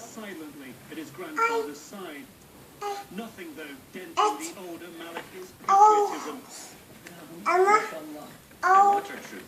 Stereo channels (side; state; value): both; identical; correlation 1.00